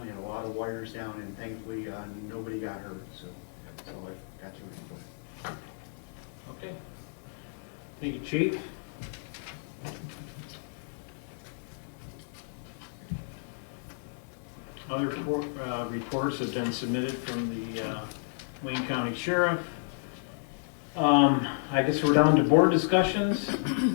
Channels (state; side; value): silent; right; digital silence